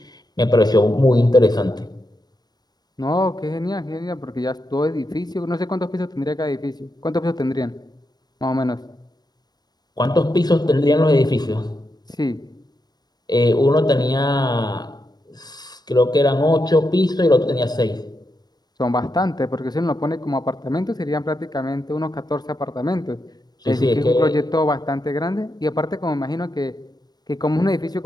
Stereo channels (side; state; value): right; late; 0.19 ms